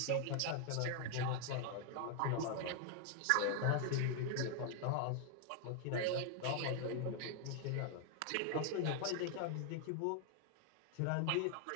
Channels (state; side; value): different; both; correlation 0.00